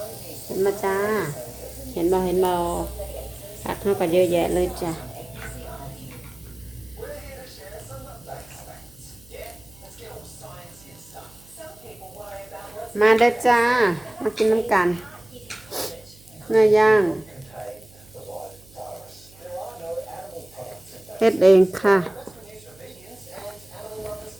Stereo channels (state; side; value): noise; right; hum, 25 dB below the sound